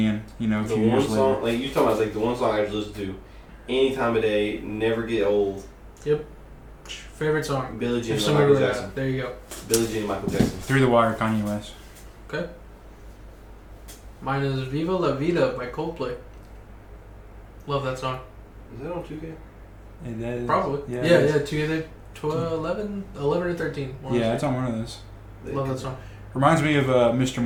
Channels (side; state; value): both; identical; correlation 1.00